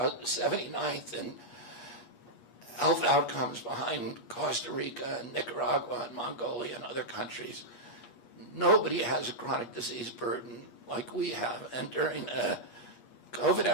79th in health outcomes behind Costa Rica and Nicaragua and Mongolia and other countries. Nobody has a chronic disease burden like we have. And during the COVID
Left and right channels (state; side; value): late; right; 8.4 ms